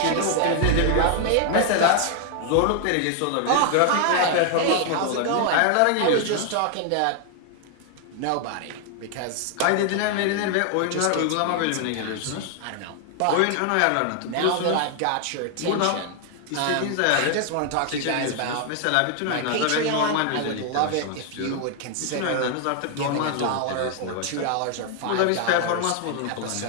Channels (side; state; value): both; different; correlation 0.00